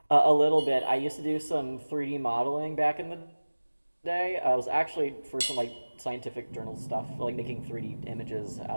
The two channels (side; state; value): both; inverted; correlation -1.00